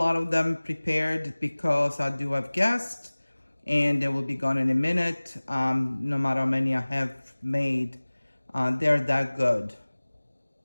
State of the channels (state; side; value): inverted; both; correlation -1.00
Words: of them prepared because I do have guests and they will be gone in a minute. No matter how many I have made, they're that good.